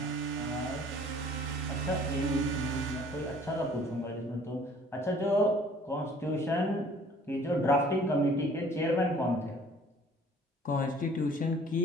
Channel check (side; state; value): both; normal; correlation 0.54